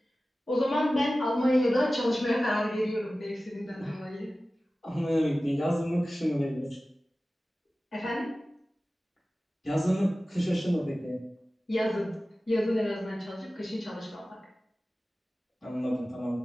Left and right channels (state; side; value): normal; both; correlation 0.96